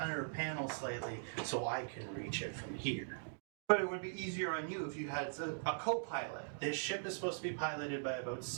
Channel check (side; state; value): left; silent; digital silence